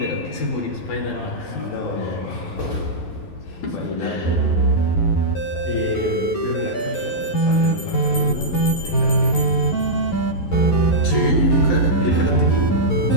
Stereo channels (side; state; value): right; late; 11 ms